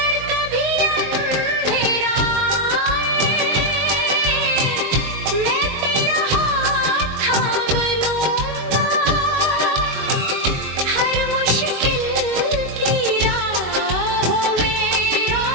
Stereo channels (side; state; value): left; late; 21 ms